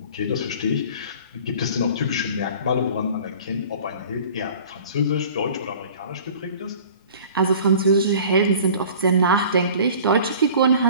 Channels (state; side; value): inverted; both; correlation -0.46